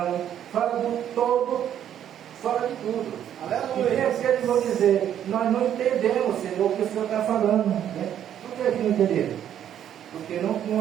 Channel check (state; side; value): quieter; left; 10.2 dB